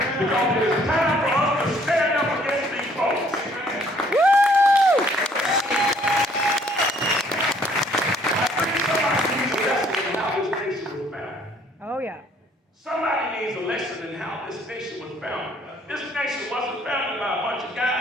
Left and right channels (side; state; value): both; normal; correlation 0.62